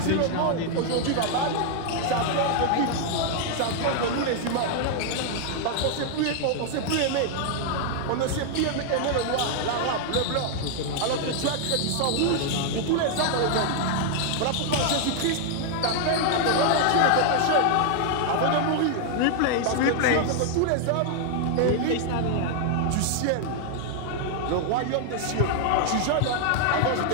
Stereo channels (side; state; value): both; different; correlation 0.00